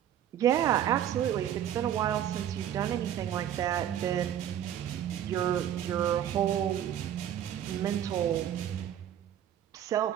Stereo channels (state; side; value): quieter; left; 10.6 dB